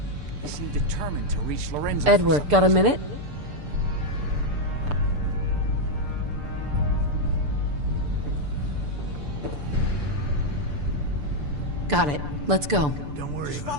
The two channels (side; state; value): left; late; 6.9 ms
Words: They seem determined to reach Lorenzo. Edward, got a minute? Got it. Let's go. Don't worry Just